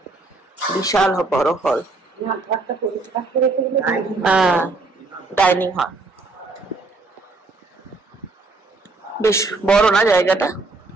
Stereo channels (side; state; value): left; quieter; 3.5 dB